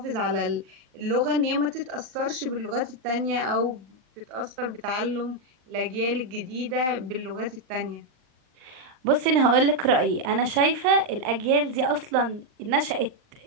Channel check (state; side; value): late; left; 39 ms